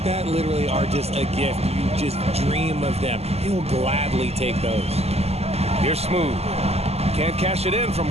that literally are just a gift. You just dream of them. He'll gladly take those. Here's Smooth. Can't cash it in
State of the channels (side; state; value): left; late; 0.30 ms